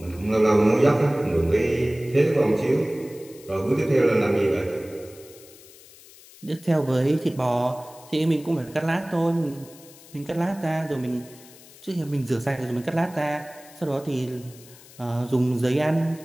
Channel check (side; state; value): left; noise; hiss, 22 dB below the sound